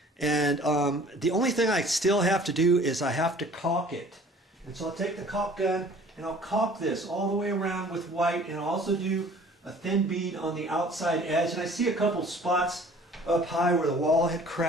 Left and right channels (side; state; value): both; normal; correlation 0.50